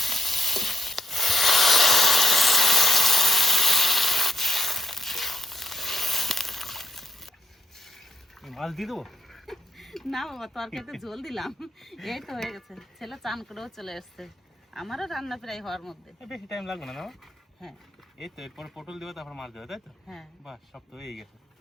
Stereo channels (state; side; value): normal; both; correlation 0.78